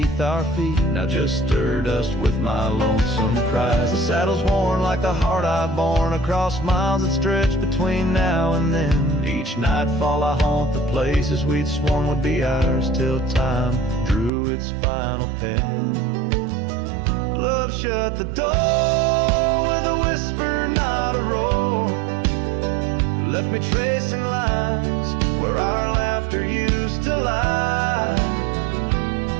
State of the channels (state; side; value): drops out; left; at 14.3 s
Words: our feet, now just stir dust with my lonesome cries. The saddle's worn like the heart I've borne across miles that stretch between now and then. Each nightfall I haunt the places we'd sworn would be ours till time drew its final pen. Love shut the door with a whisper, not a roar. Left me tracing lines where our laughter used to lie.